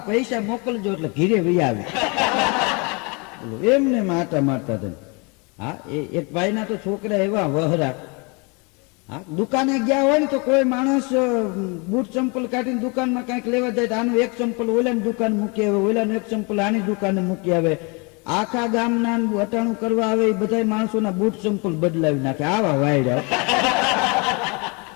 પૈસા મોકલજો એટલે ઘીરે વહી આવે. એમને માટા મારતા હતા. હા, એક ભાઈના તો છોકરા એવા વહરા. હા, દુકાને ગયા હોય ને તો કોઈ માણસ બૂટ ચંપલ કાઢીને દુકાનમાં કઈક લેવા જાય તો આનું એક ચંપલ ઓલાની દુકાન મૂકી આવે, ઓલાનું એક ચંપલ આની દુકાને મૂકી આવે. આખા ગામના વટાણું કરવા આવે એ બધા માણસોના બૂટ ચંપલ બદલાવી નાખે. આવા વાયડા.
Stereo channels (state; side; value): quieter; right; 31.0 dB